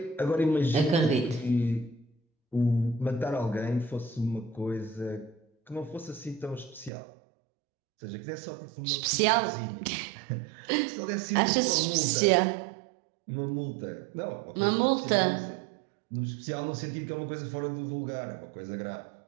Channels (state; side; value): drops out; left; at 6.9 s